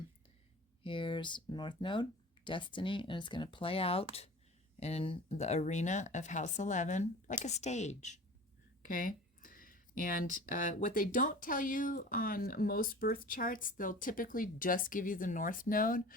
Here's North Node, Destiny, and it's going to play out in the arena of House 11 like a stage. Okay? And what they don't tell you on most birth charts, they'll typically just give you the North Node,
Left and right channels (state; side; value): normal; both; correlation 0.39